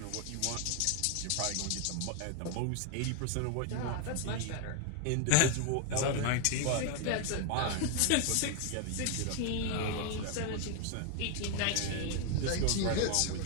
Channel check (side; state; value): both; different; correlation 0.01